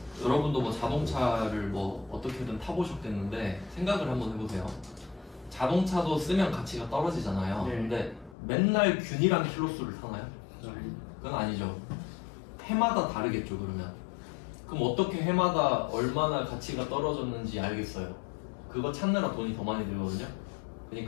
여러분도 뭐 자동차를 뭐 어떻게든 타보셨겠는데 생각을 한번 해보세요. 자동차도 쓰면 가치가 떨어지잖아요. 네. 근데 맨날 균일한 킬로수를 타나요? 그건 아니죠. 해마다 다르겠죠. 그럼 어떻게 해마다 얼마나 가치가 떨어졌는지 알겠어요. 그거 찾느라 돈이 더 많이 들거든요.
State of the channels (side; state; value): right; drops out; at 8.3 s